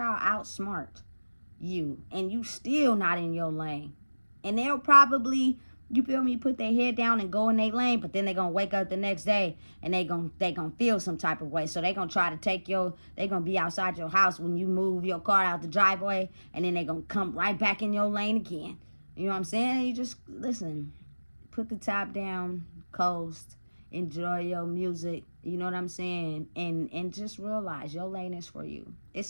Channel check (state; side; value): inverted; both; correlation -1.00